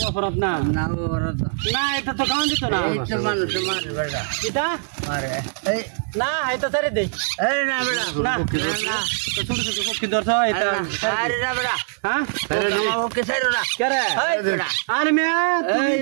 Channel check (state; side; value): silent; left; 64 dB below the other